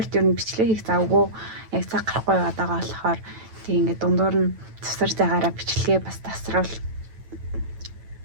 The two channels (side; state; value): left; late; 9.1 ms